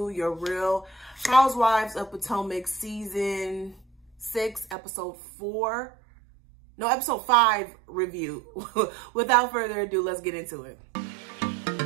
your Real Housewives of Potomac season 6, episode 5 review. Without further ado, let's get into it.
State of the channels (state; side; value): drops out; left; at 4.8 s